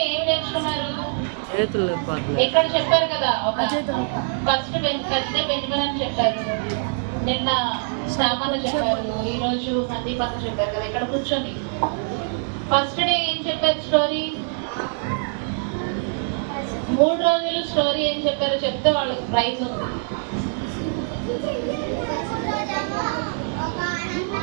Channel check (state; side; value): silent; left; digital silence